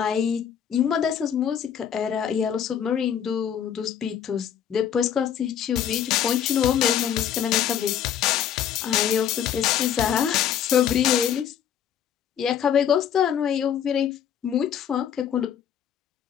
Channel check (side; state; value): right; quieter; 9.1 dB